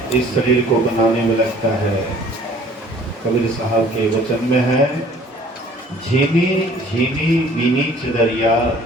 इस शरीर को बनाने में लगता है। कबीर साहब के वचन में है, झीनी झीनी बीनी चदरिया,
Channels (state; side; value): normal; both; correlation 0.54